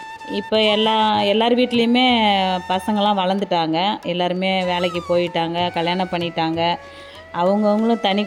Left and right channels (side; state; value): both; identical; correlation 1.00